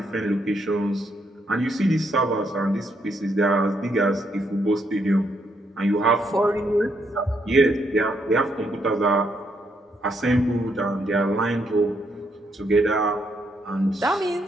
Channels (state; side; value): normal; both; correlation 0.75